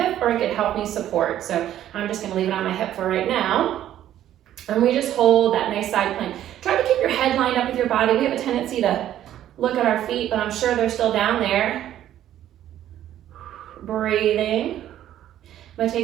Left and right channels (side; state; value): left; quieter; 11.9 dB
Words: or it could help me support. So I'm just gonna leave it on my hip for right now. And we just hold that nice side plank. Try to keep your head lined up with your body. We have a tendency to look at our feet, but I'm sure they're still down there. Breathing. I'm gonna